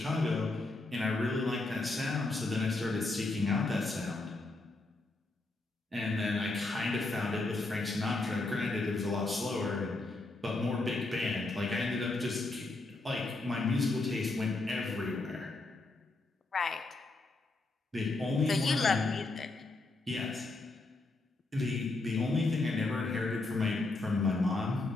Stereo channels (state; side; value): quieter; right; 3.2 dB